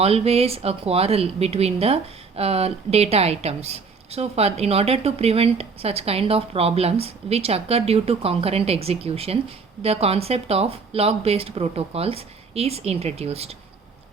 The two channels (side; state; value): left; quieter; 4.9 dB